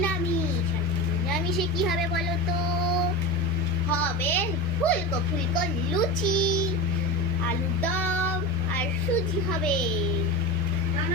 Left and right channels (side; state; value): both; normal; correlation 0.23